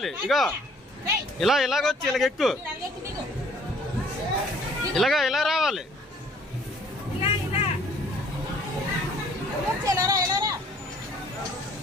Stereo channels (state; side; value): normal; both; correlation 0.58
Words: ఇగో ఇలా ఇలాగొచ్చి ఇలాగెక్కు. ఇలా రావాలి.